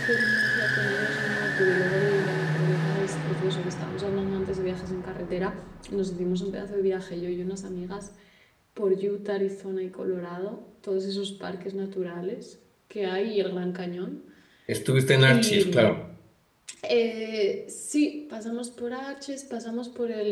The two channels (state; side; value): identical; both; correlation 1.00